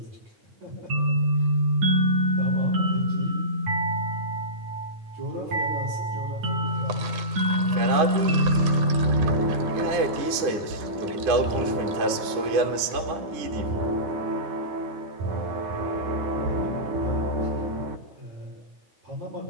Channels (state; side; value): late; left; 9.8 ms